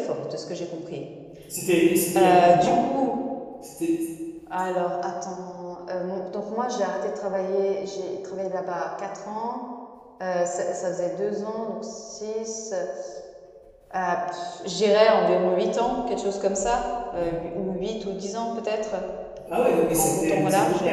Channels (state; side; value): identical; both; correlation 1.00